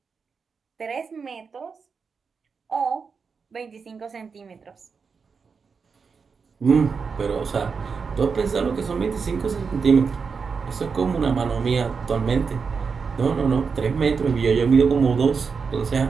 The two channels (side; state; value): left; quieter; 5.4 dB